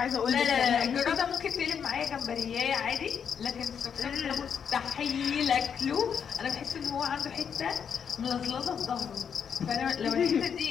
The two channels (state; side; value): quieter; right; 7.3 dB